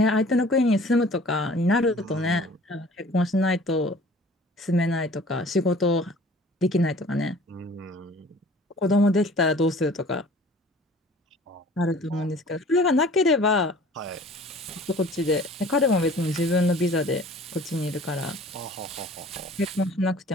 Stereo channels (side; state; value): both; normal; correlation 0.48